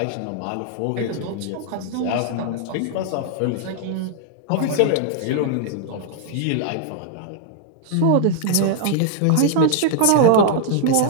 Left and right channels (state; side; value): different; both; correlation -0.01